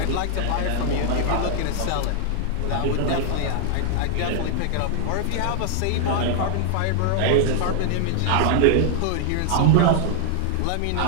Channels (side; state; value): both; different; correlation -0.01